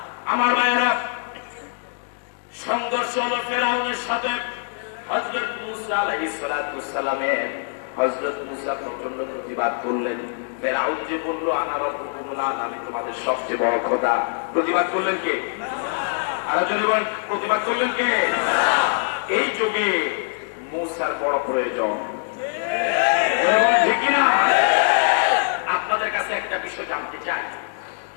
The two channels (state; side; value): silent; right; 63 dB below the other